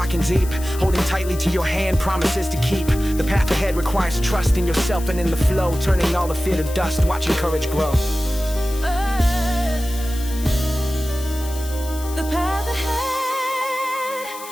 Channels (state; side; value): noise; left; hiss, 14 dB below the sound